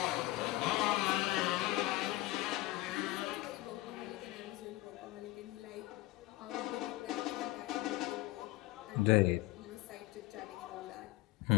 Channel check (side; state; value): right; quieter; 18.6 dB